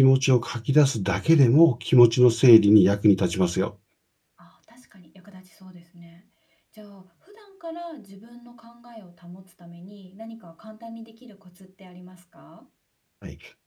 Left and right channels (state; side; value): identical; both; correlation 1.00